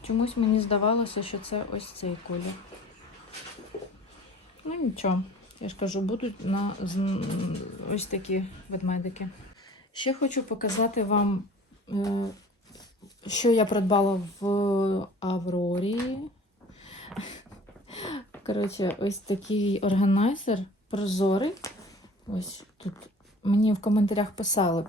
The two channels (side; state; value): both; normal; correlation 0.45